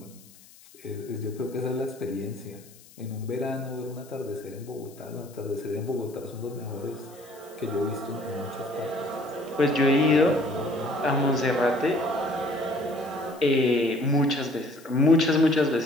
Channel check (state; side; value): noise; left; hiss, 24 dB below the sound